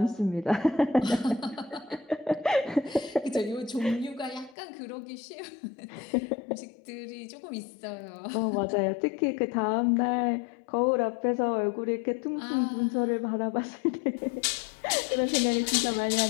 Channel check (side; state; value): right; drops out; at 4.5 s